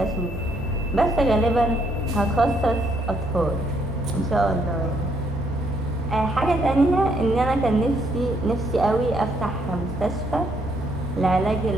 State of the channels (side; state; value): both; normal; correlation 0.71